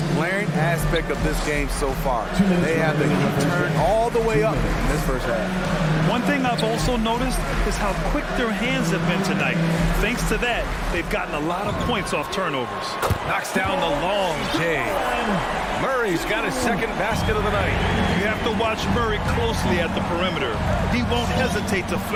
glaring aspect of this game so far. They have the heat turned all the way up in this first half. One thing I've also noticed is how quick their hands have been tonight. Thanks to that, they've gotten a lot of points off turnovers. Knocks down the long J. Murray's got his second basket of the night. You have to watch Murray closely at the perimeter. He won't hesitate to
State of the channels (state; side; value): identical; both; correlation 1.00